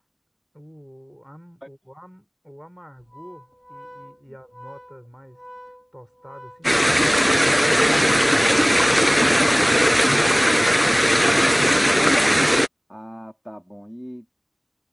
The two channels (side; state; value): both; identical; correlation 1.00